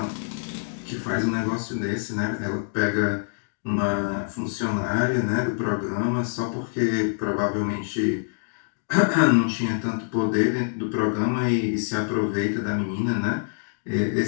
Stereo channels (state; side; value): silent; right; digital silence